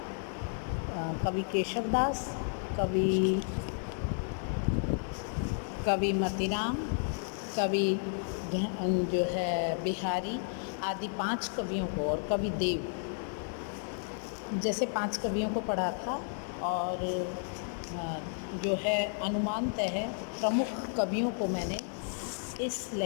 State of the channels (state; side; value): silent; right; 56 dB below the other